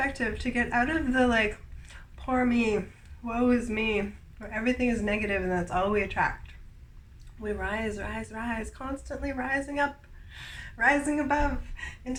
to get out of the like, poor me, woe is me, where everything is negative and that's all we attract. We rise, constantly rising up, rising above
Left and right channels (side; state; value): both; identical; correlation 1.00